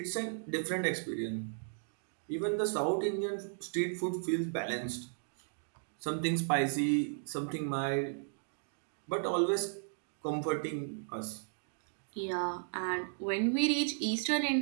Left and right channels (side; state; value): left; silent; digital silence